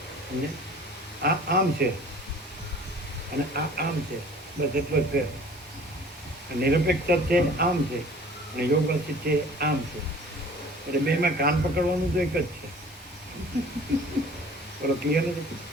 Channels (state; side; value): normal; both; correlation 0.48